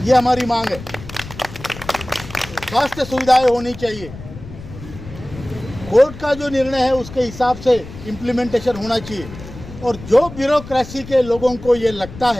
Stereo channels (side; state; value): left; noise; rumble, 14 dB below the sound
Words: ये हमारी मांग है। स्वास्थ्य सुविधाएं होनी चाहिए। कोर्ट का जो निर्णय है उसके हिसाब से इम्प्लीमेंटेशन होना चाहिए। और जो ब्यूरोक्रेसी के लोगों को ये लगता